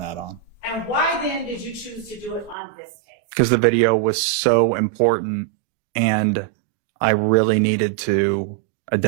on. And why then did you choose to do it on this case? Because the video was so important and I really needed to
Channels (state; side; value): drops out; left; at 2.6 s